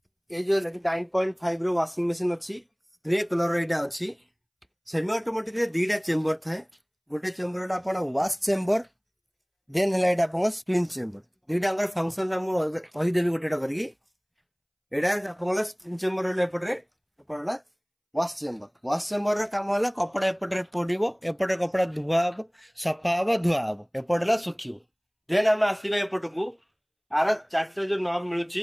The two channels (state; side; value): identical; both; correlation 1.00